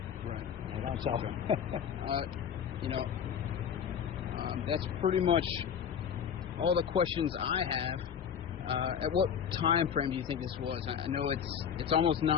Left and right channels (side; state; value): right; quieter; 7.9 dB